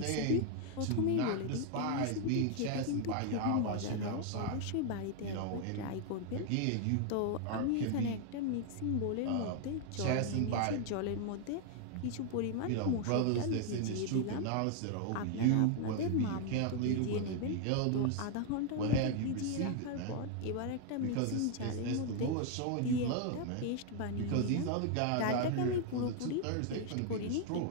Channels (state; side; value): different; both; correlation 0.00